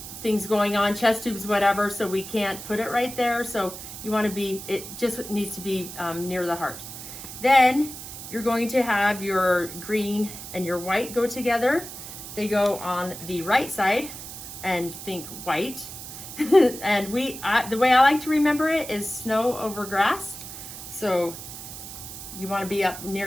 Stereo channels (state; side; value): noise; right; hiss, 11 dB below the sound